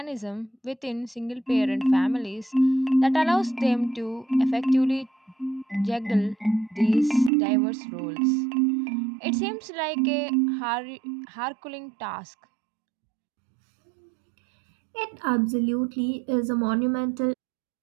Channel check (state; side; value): drops out; left; at 7.3 s